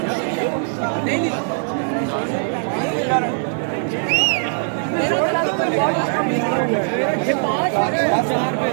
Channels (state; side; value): silent; left; digital silence